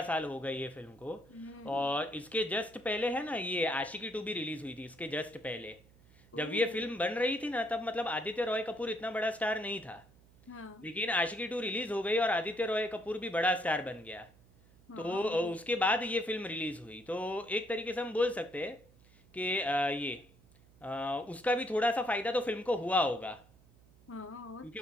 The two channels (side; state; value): right; noise; hum, 27 dB below the sound